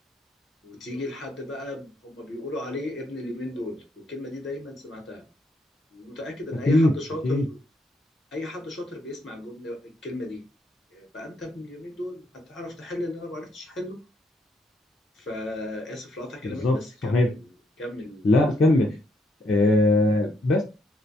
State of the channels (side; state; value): both; normal; correlation 0.74